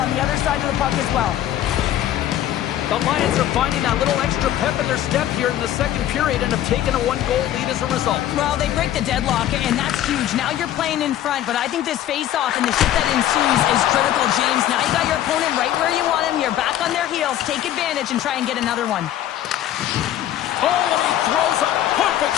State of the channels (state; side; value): quieter; right; 12.2 dB